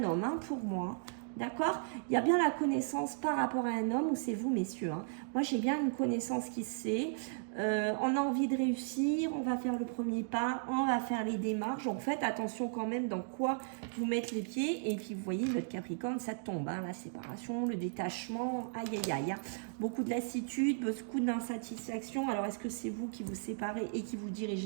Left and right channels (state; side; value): silent; left; digital silence